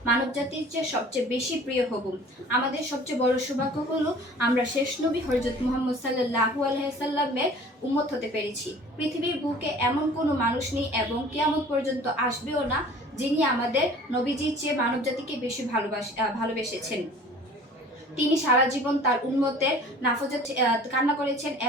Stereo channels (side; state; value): both; normal; correlation 0.46